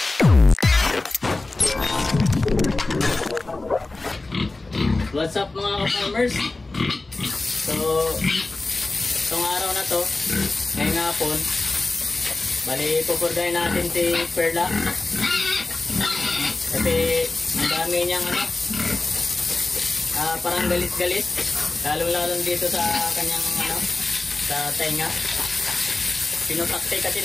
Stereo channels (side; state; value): right; quieter; 3.2 dB